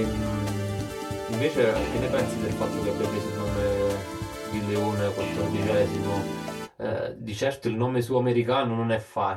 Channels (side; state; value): both; identical; correlation 1.00